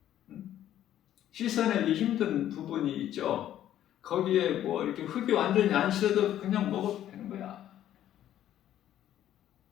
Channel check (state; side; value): quieter; right; 11.7 dB